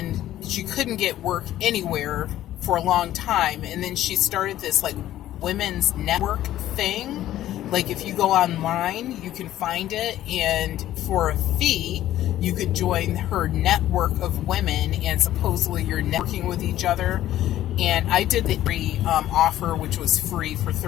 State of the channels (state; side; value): quieter; right; 13.3 dB